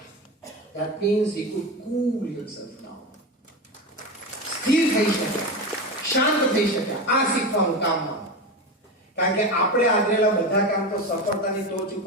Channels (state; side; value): normal; both; correlation 0.21